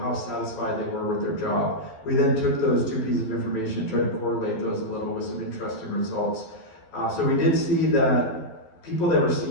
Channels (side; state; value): right; late; 12 ms